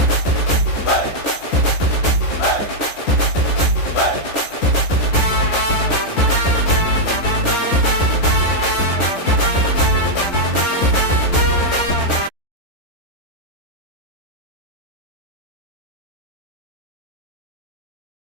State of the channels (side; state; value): right; late; 13 ms